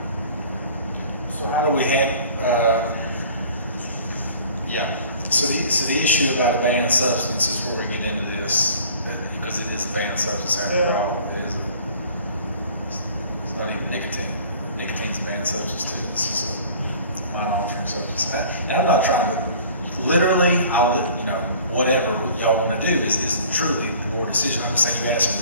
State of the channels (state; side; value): inverted; both; correlation -0.49